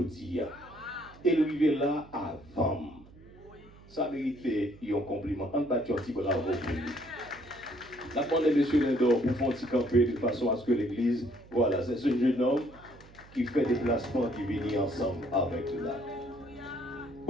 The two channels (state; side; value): noise; right; hum, 22 dB below the sound